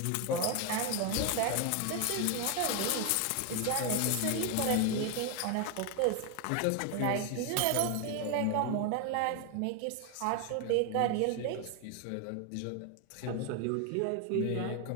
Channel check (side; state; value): both; different; correlation 0.01